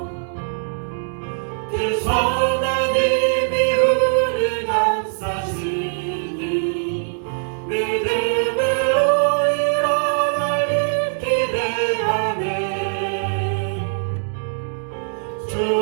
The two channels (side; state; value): left; silent; digital silence